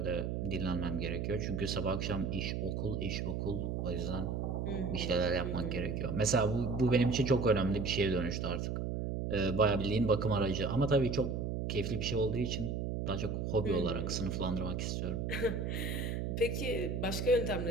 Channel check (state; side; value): noise; right; hum, 2 dB below the sound